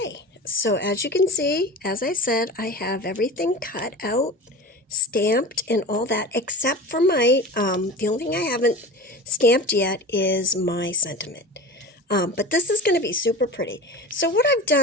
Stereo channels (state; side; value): normal; both; correlation 0.33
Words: so as you can see, as I said, I have everything cut out, stamped, and all that, except for my, the only thing I haven't stamped yet is my sentiment. But this is going to be super pretty. So what I've